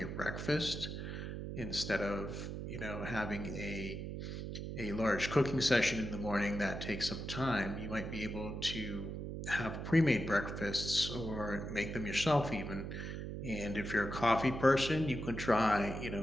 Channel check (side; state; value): right; noise; hum, 6 dB below the sound